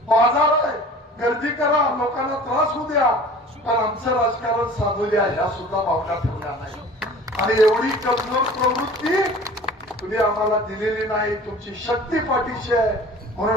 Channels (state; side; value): normal; both; correlation 0.44